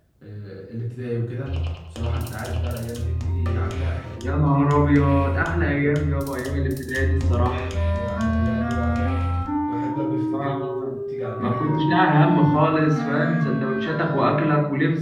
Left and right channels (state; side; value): identical; both; correlation 1.00